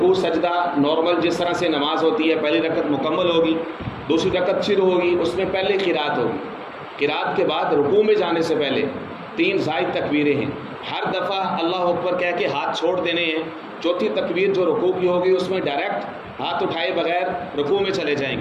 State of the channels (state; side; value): identical; both; correlation 1.00